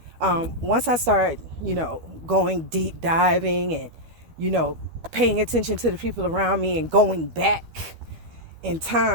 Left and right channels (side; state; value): left; late; 12 ms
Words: once I started, going deep diving and, paying attention to the people around me and going back in